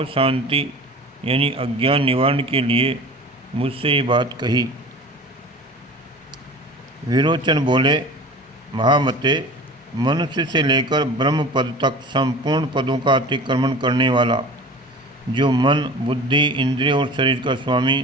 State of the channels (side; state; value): both; normal; correlation 0.39